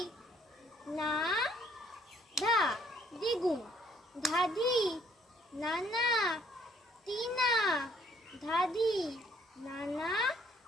না, ধা, দ্বিগুণ। ধাধি, নানা, তিনা, ধাধি, নানা,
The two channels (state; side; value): normal; both; correlation 0.64